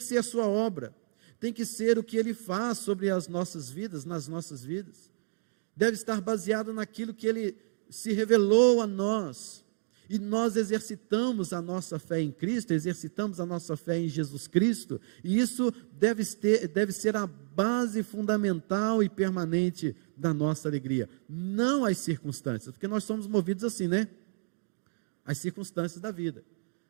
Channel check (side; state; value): left; silent; digital silence